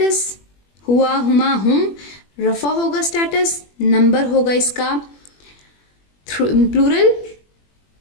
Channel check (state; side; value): late; right; 21 ms